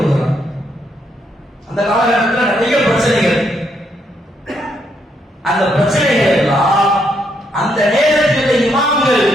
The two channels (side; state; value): both; normal; correlation 0.75